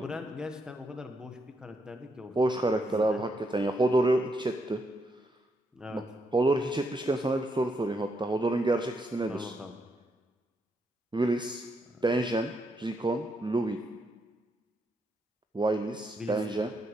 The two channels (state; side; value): normal; both; correlation 0.78